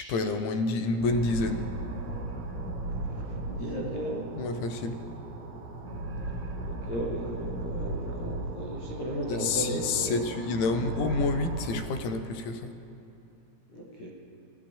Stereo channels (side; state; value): right; late; 17 ms